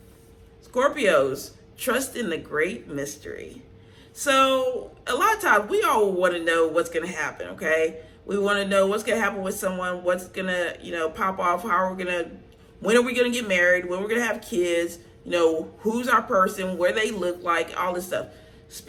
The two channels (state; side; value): identical; both; correlation 1.00